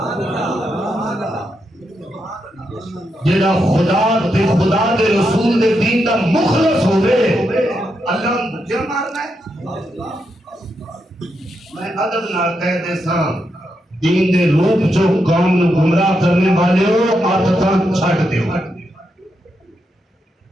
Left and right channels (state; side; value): normal; both; correlation 0.83